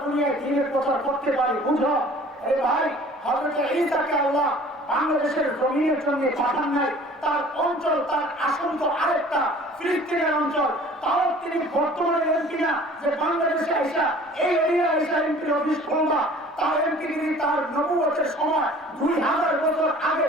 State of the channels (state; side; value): normal; both; correlation 0.48